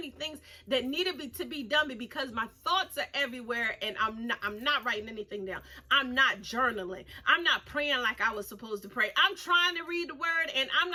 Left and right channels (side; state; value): both; identical; correlation 1.00